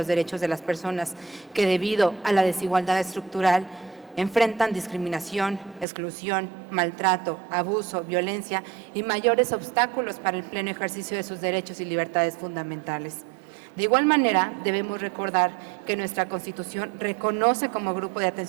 derechos de las personas que debido a la desigualdad estructural enfrentan discriminación, exclusión, maltrato, abuso, violencia y mayores obstáculos para el pleno ejercicio de sus derechos y libertades fundamentales. De igual manera, debemos recordar que nuestra Constitución reconoce como grupo de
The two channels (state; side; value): drops out; left; at 5.9 s